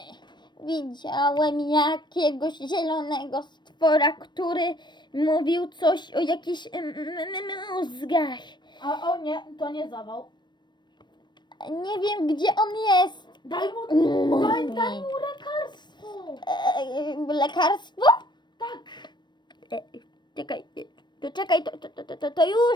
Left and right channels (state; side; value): late; right; 0.22 ms